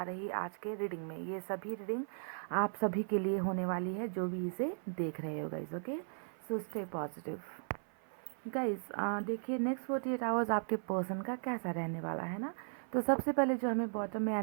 रही आज के रीडिंग में। ये सभी रीडिंग आप सभी के लिए होने वाली है जो भी इसे देख रहे हो guys. Okay, so stay positive. Guys देखिए नेक्स्ट 48 आवर्स आपके पर्सन का कैसा रहने वाला है ना। तो सबसे पहले जो हमें बॉटम में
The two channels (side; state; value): left; silent; 53 dB below the other